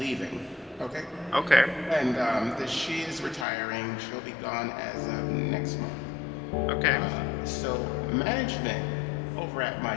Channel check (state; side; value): drops out; right; at 3.5 s